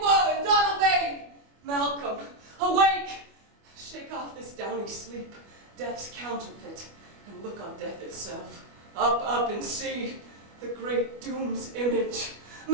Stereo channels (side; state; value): left; late; 25 ms